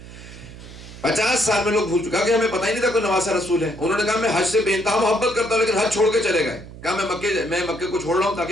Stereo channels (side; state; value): right; noise; hum, 16 dB below the sound